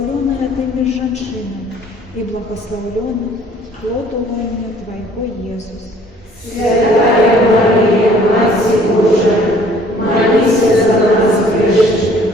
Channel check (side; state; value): both; normal; correlation 0.56